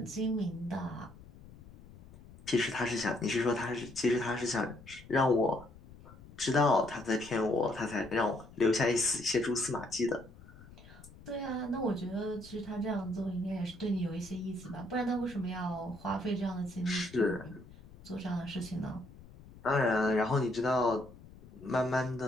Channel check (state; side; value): noise; left; rumble, 20 dB below the sound